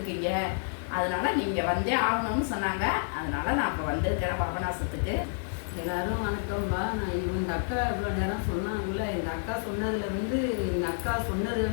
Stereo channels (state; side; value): silent; right; 56 dB below the other